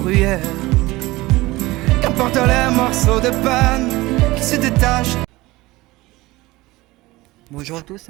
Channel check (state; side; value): quieter; left; 19.8 dB